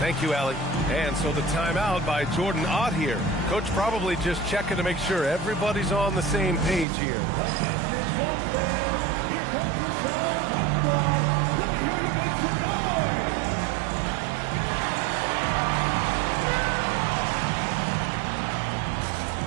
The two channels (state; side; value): drops out; left; at 6.9 s